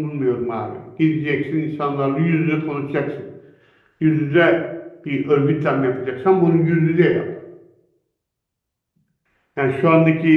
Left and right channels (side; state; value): both; identical; correlation 1.00